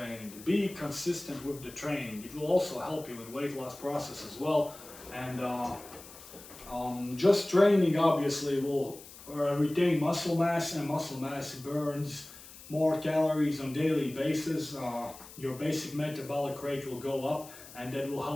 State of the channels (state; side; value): noise; left; hiss, 18 dB below the sound